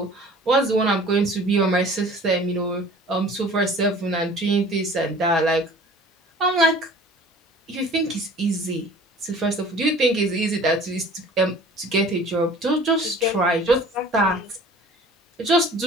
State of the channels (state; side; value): normal; both; correlation 0.47